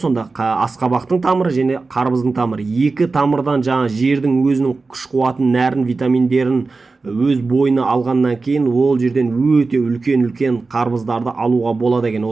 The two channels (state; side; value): quieter; left; 3.9 dB